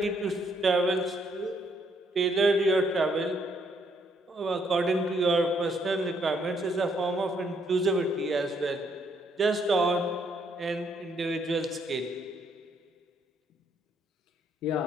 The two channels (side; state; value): both; normal; correlation 0.71